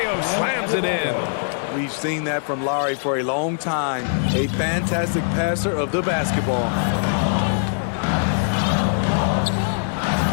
slams it in. We've seen that from Lowry for a long time. A fantastic passer of the basketball.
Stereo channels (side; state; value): right; silent; 64 dB below the other